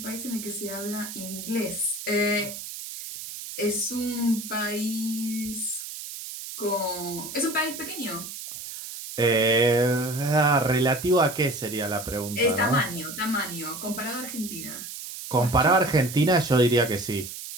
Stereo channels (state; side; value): noise; right; hiss, 10 dB below the sound